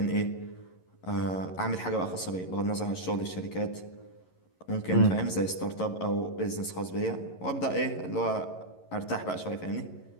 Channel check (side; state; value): right; late; 11 ms